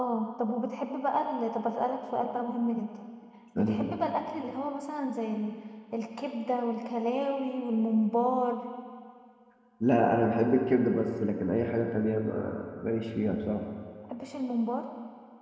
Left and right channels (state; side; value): identical; both; correlation 1.00